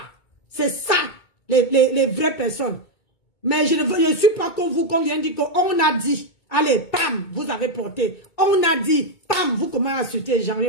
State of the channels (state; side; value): late; right; 2.2 ms